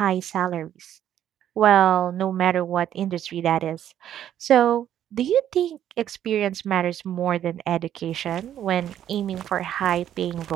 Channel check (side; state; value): left; quieter; 10.8 dB